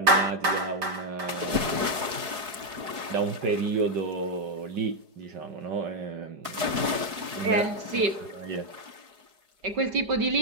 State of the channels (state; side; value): late; left; 4.7 ms